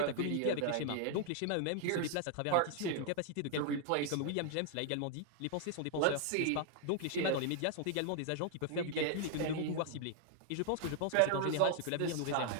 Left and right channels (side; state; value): both; different; correlation 0.00